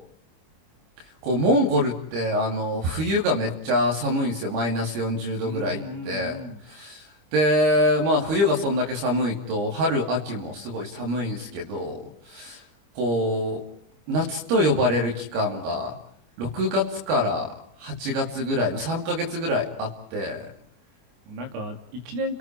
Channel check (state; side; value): late; left; 25 ms